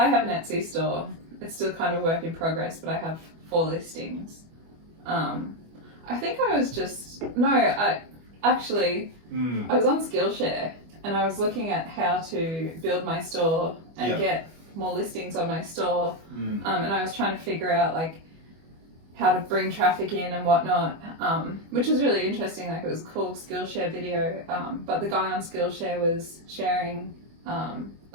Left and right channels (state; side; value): late; left; 25 ms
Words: have an Etsy store. It's still kind of work in progress, but I have 4 listings. I think I was I was on Skillshare and I was looking at how to build my store and get more listings on my store. And I was trying to figure out like how to bring traffic in and whatnot, which was really interesting. Like it was a cool Skillshare video, but the guy on Skillshare was sharing